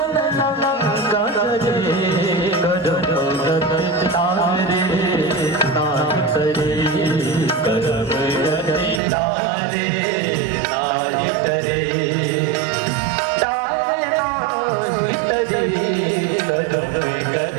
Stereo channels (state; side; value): drops out; left; at 9.0 s